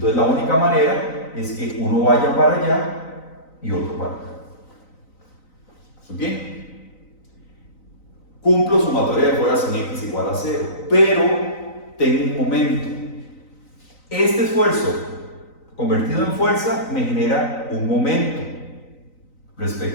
la única manera es que uno vaya para allá y otro para acá. ¿Bien? Cumplo sumatoria de fuerzas en X igual a 0, pero tengo un momento. Este esfuerzo convertido en fuerza me genera un momento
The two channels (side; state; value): right; late; 3.9 ms